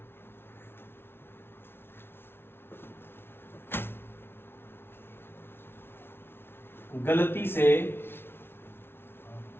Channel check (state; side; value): late; right; 0.11 ms